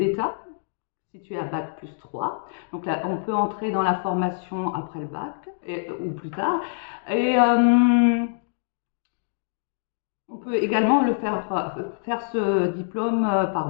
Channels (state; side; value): silent; right; digital silence